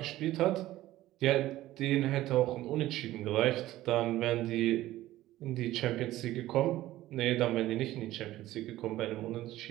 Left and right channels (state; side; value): quieter; left; 15.5 dB